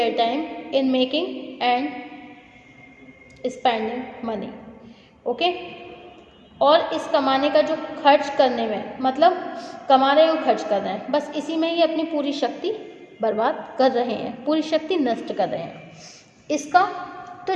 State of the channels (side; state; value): both; identical; correlation 1.00